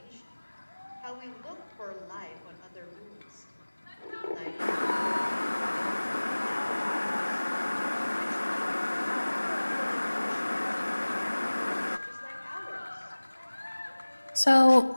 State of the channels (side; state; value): both; inverted; correlation -1.00